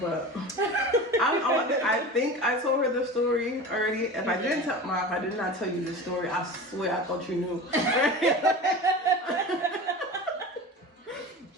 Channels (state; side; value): normal; both; correlation 0.32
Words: I think I told her the story already. If I didn't tell if I did not tell you this story, I swear I thought you knew.